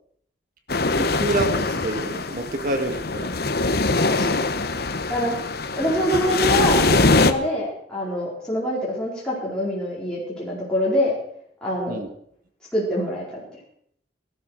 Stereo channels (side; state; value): both; normal; correlation 0.25